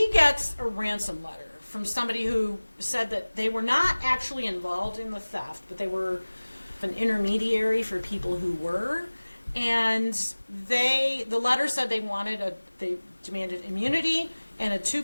gets a ransom letter from somebody who said that they were not actually involved in the theft, but they were an intermediary for people who were. And the letter said they demanded immunity and a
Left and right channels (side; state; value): both; inverted; correlation -1.00